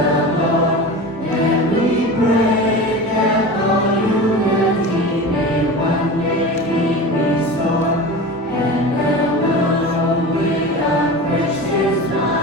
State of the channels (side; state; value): both; normal; correlation 0.31